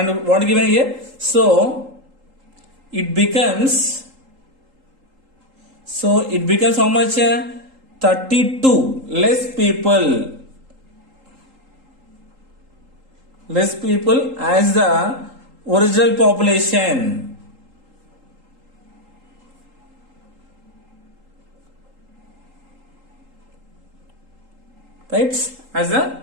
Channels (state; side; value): late; left; 3.8 ms